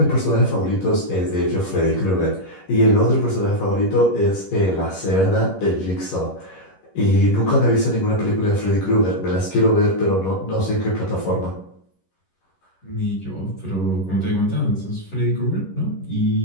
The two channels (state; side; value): late; right; 11 ms